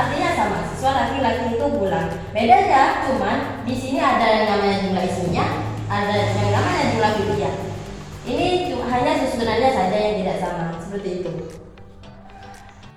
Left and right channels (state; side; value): identical; both; correlation 1.00